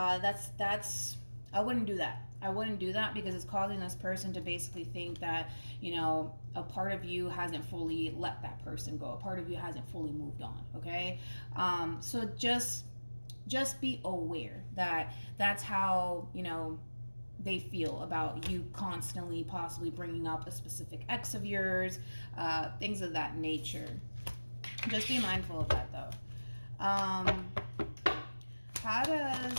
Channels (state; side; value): inverted; both; correlation -1.00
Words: I wouldn't do that. I wouldn't do that, because it's causing this person to basically think that, a part of you hasn't fully let that person go. A part of you hasn't fully moved on, okay? So just be aware that that's how, they feel about you constantly possibly bringing up a specific ex of yours, things of that nature. Just be mindful of that, though. How